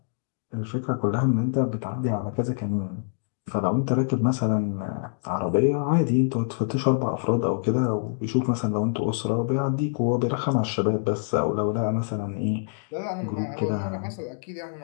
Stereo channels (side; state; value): right; silent; digital silence